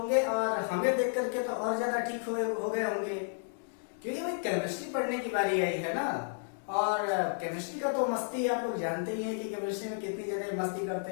और हमें देख करके तो और ज्यादा ठीक हो गए होंगे, क्योंकि भाई केमिस्ट्री पढ़ने की बारी आई है ना। और केमिस्ट्री का तो मस्ती आप लोग जानते ही हैं कि केमिस्ट्री में कितनी ज्यादा मस्ती करते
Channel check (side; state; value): right; silent; digital silence